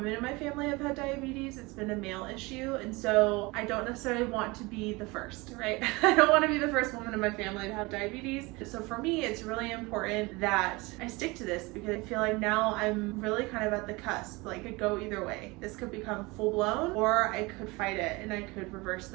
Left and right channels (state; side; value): quieter; left; 24.1 dB